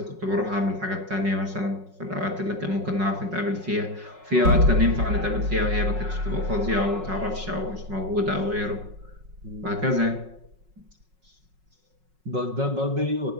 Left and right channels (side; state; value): left; late; 5.4 ms